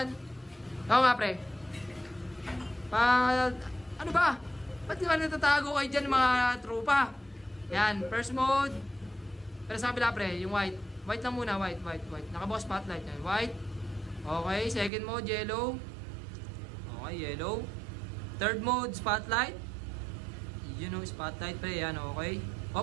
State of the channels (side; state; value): left; drops out; at 14.9 s